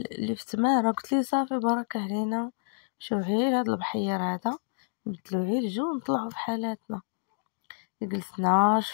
اللي في تمارا، قلت لي صافي بارك علينا، شوف غير هذا البحير هذا نبدلو غير الجو ونطلعوا في حالاتنا. جلسنا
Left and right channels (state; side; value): silent; right; digital silence